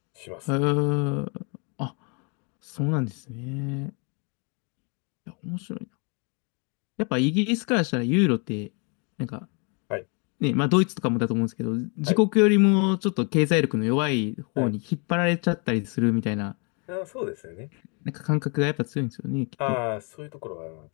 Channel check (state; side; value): quieter; right; 34.9 dB